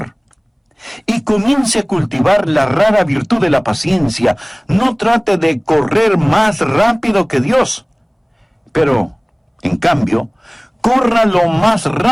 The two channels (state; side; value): identical; both; correlation 1.00